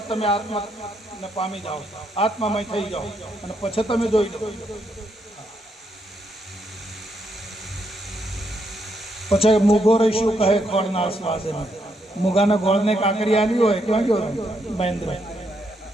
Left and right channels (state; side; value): normal; both; correlation 0.77